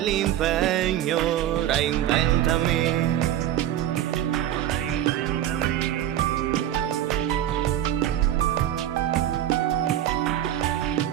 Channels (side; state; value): left; quieter; 11.9 dB